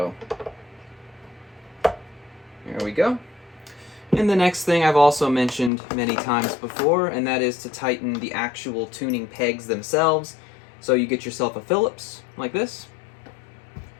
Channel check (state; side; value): drops out; right; at 5.7 s